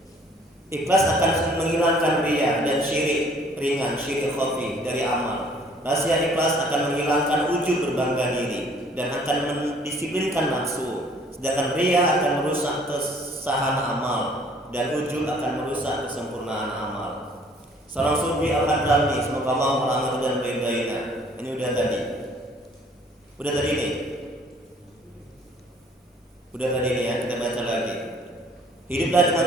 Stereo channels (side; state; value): both; normal; correlation 0.58